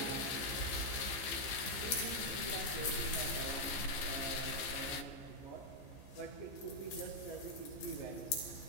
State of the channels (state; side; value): late; right; 15 ms